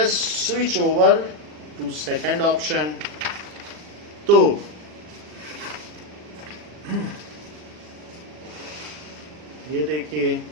switch over to second option. तो ये देखिए,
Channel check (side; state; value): left; late; 40 ms